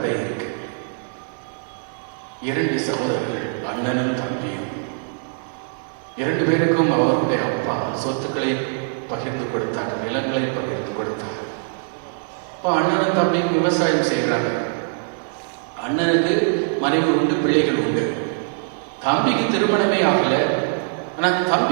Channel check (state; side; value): silent; left; digital silence